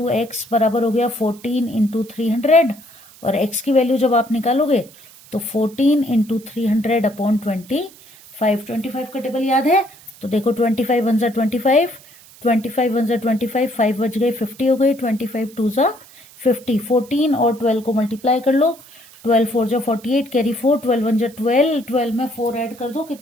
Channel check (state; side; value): noise; right; hiss, 24 dB below the sound